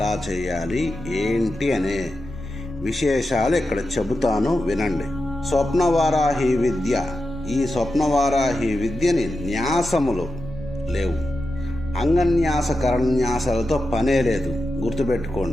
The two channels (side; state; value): both; normal; correlation 0.89